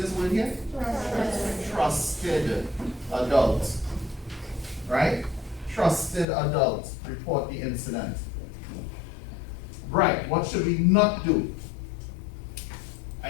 word here? Trusted adult. Right? Trusted adult. Report the incident. Right, what should we not do?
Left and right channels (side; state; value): right; drops out; at 6.2 s